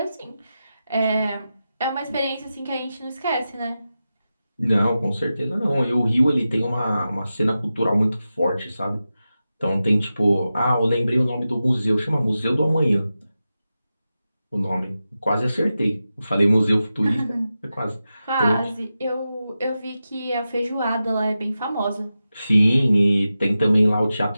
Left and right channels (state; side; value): inverted; both; correlation -0.92